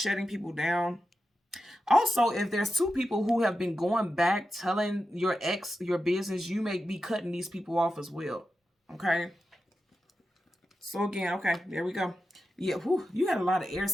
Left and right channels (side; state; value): both; normal; correlation 0.90